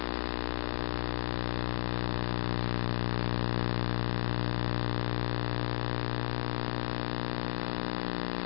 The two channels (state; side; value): silent; right; 55 dB below the other